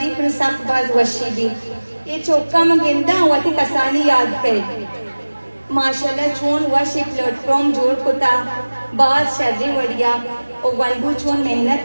پر سخت باز وشی بھی یہ چوکا مگندہ واتی کسانی یاد کرے ماشاءاللہ چون وشی پلیٹ فارم جوڑ کتا بعض شرری وڑیا اور ونبو چون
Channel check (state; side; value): inverted; both; correlation -1.00